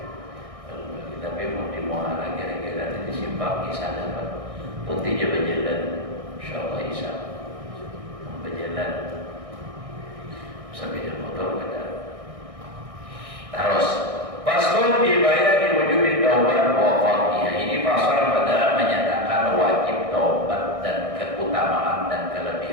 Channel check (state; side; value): late; left; 1.6 ms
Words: Tapi mau di muara kira-kira di simpang isya dapat putihnya berjalan, insyaallah isya berjalan sampai di motor ada. Terus pasal dibayar di wujud taubat wa fadhiyah. Ini pasal pada menyatakan wajib taubat dan keutamaan dan